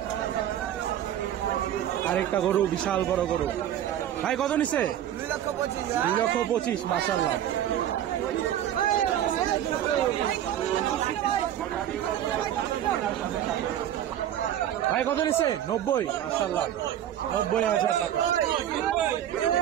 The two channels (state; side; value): quieter; left; 11.2 dB